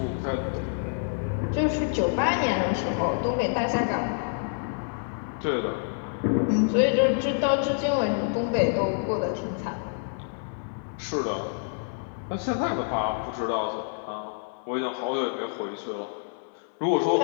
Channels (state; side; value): silent; right; digital silence